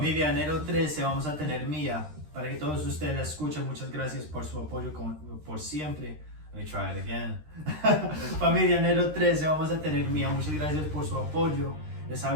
Enero 13 vamos a tener Mía. Para que todos ustedes la escuchen, muchas gracias por su apoyo por siempre. Let me try it again. Familia Enero 13 vamos a tener Mía. Muchas gracias por su apoyo. Les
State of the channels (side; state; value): left; late; 13 ms